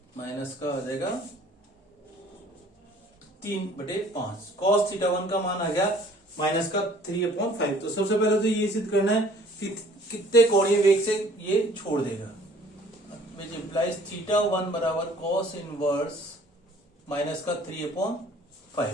माइनस का हो जाएगा 3 बटे 5। कॉस थीटा 1 का मान आ गया माइनस का 3/5। तो सबसे पहले तो ये सिद्ध करना है कि कितने कोणीय वेग से ये छोड़ देगा, विच इंप्लाइज थीटा 1 बराबर कॉस इनवर्स माइनस का 3/5 आ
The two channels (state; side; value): normal; both; correlation 0.55